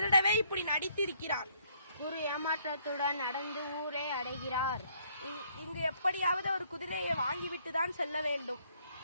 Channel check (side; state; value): both; inverted; correlation -0.66